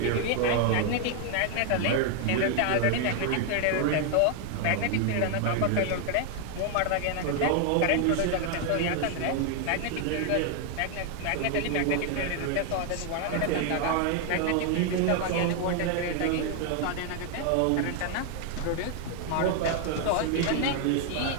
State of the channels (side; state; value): both; different; correlation 0.00